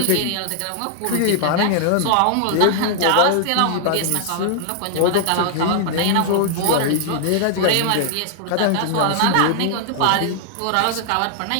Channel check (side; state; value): both; different; correlation -0.01